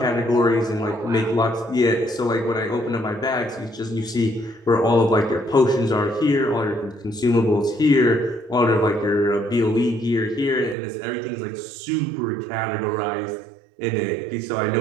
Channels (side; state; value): left; drops out; at 10.8 s